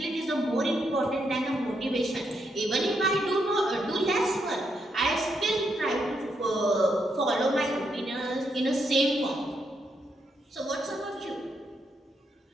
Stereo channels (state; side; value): normal; both; correlation 0.79